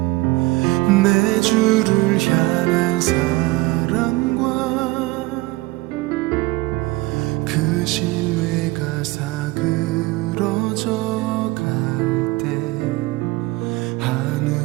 내 주를 향한 사랑과 그 신뢰가 사그러져 갈 때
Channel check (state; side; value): quieter; left; 20.7 dB